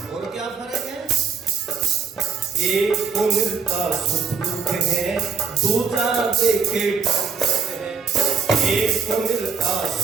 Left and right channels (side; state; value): left; quieter; 6.0 dB